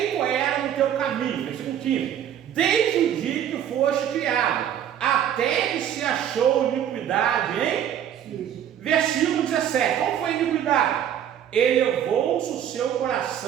era no teu caminho, versículo 15, desde o dia que foste criado, até que se achou iniquidade, hein? Versículo 17, qual foi a iniquidade? Elevou-se o seu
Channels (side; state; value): left; quieter; 9.9 dB